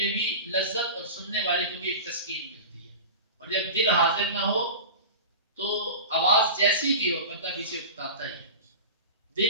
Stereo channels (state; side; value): inverted; both; correlation -0.32